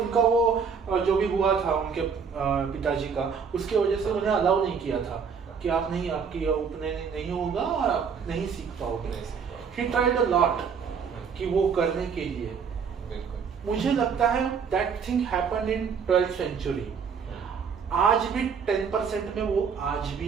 वो जो भी हुआ था उनके पिताजी का, उसके वजह से उन्हें अलाउ नहीं किया था कि आप नहीं, आपकी उपनयन नहीं होगा और आप नहीं सीख पाओगे। ही ट्राइड अ लॉट कि वो करने के लिए। मुझे लगता है that thing happened in 12th century. आज भी 10% में वो आज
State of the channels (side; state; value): left; quieter; 6.3 dB